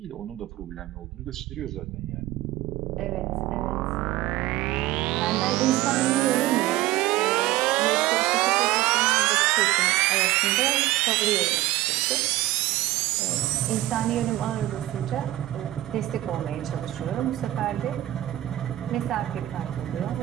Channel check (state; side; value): quieter; left; 16.0 dB